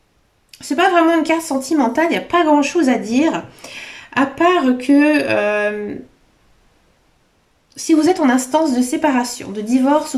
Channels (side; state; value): both; identical; correlation 1.00